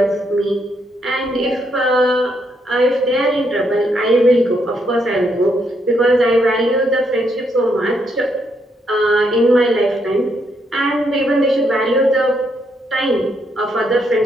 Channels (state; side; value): normal; both; correlation 0.76